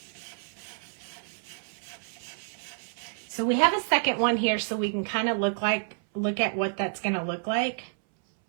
So we have a second one here so we can kind of look at what that's going to look like.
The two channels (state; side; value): silent; left; 59 dB below the other